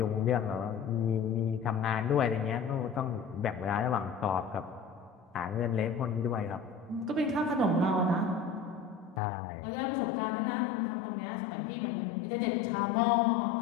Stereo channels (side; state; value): right; drops out; at 9.2 s